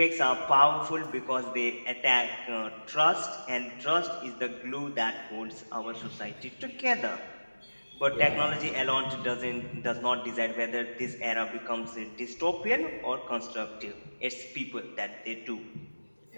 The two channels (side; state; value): both; inverted; correlation -1.00